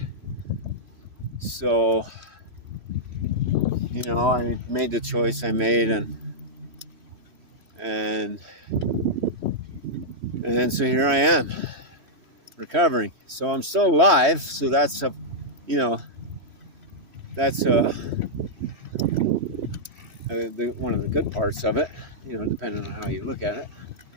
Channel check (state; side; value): late; left; 3.0 ms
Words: So, I made the choice I made, and so here I am, recovering. So I'm still alive, so that's one of the good parts of it, depending on how you look at it.